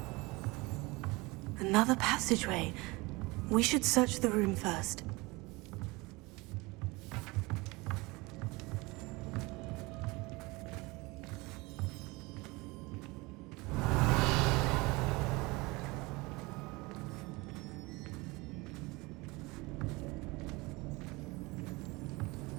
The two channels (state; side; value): quieter; left; 24.0 dB